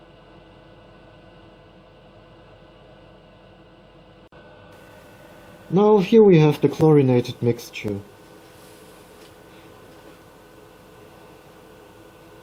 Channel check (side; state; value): both; identical; correlation 1.00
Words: Now here we have the chlorinated mixture.